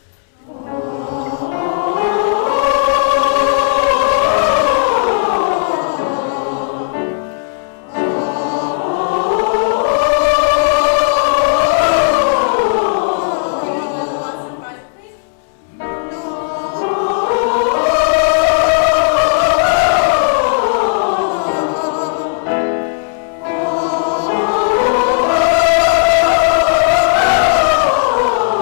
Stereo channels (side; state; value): right; silent; digital silence